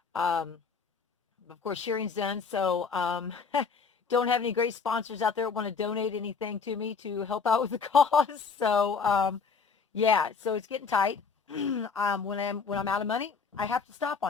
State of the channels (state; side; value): quieter; right; 5.4 dB